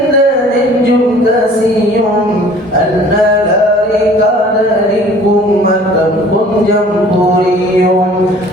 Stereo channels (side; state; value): both; normal; correlation 0.50